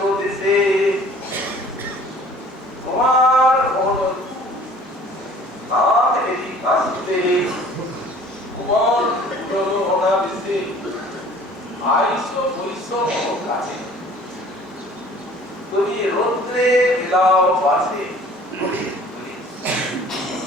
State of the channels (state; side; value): normal; both; correlation 0.50